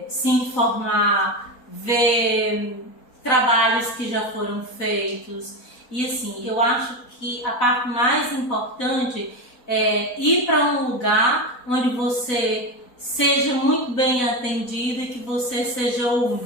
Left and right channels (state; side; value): late; right; 4.0 ms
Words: se informar, ver trabalhos que já foram feitos. E assim, eu acho que a parte mais importante é ir para um lugar onde você seja muito bem atendida e que você seja